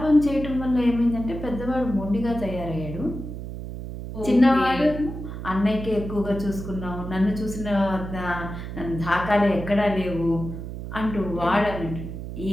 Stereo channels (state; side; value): noise; right; hum, 8 dB below the sound